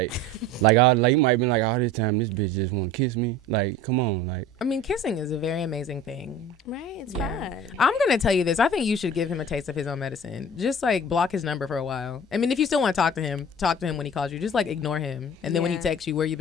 he might have been like, all this time, this bitch just want to kiss me. Like, come on, like. I mean, kissing is a very amazing thing. Right? It's Yeah. fine. I'm going to tell you this. I think you should give him a taste of his own medicine. Just, like, block his number for a while. I mean, if you still want to talk to him when he calls you. Just, like, ignore him. And then when he Yeah. texts you, where you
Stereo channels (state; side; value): normal; both; correlation 0.40